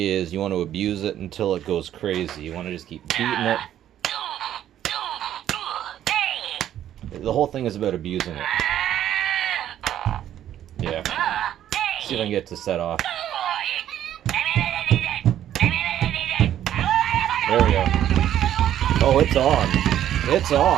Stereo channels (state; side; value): quieter; left; 11.3 dB